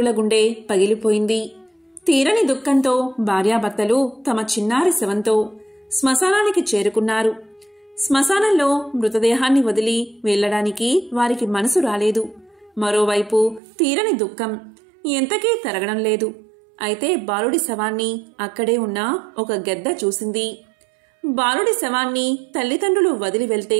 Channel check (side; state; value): left; drops out; at 13.6 s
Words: గుండె పగిలిపోయింది. తీరని దుఃఖంతో భార్యాభర్తలు తమ చిన్నారి శవంతో శ్మశానానికి చేరుకున్నారు. శ్మశానంలో మృతదేహాన్ని వదిలి వెళ్లడానికి వారికి మనసు రాలేదు. మరోవైపు తీరని దుఃఖం ఎంతకీ తరగడం లేదు. అయితే బాలుడి శవాన్ని అక్కడే ఉన్న ఒక గెద్ద చూసింది. బాలుడి శవాన్ని తల్లిదండ్రులు వదిలి వెళ్తే